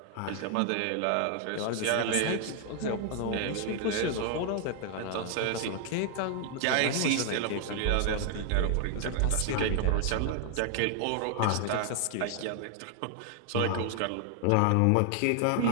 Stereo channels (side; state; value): both; different; correlation 0.00